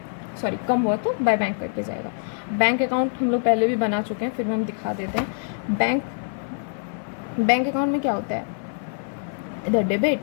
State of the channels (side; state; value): right; silent; 59 dB below the other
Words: सॉरी कम हुआ तो बाय बैंक करके जाएगा। बैंक अकाउंट हम लोग पहले भी बना चुके हैं, फिर हम दिखा देते हैं। बैंक अकाउंट में क्या होता है? इधर डेबिट,